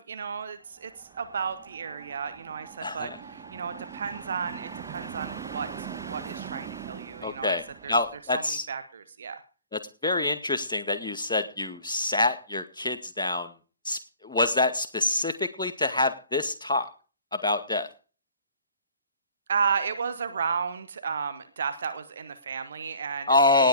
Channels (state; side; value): inverted; both; correlation -0.53